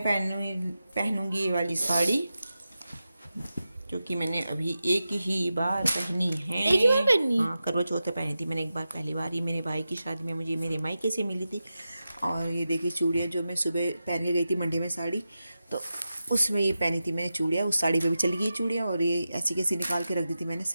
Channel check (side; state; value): both; inverted; correlation -0.92